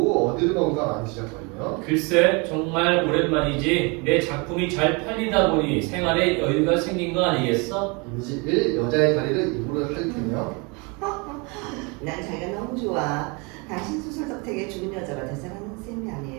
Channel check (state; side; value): quieter; left; 30.1 dB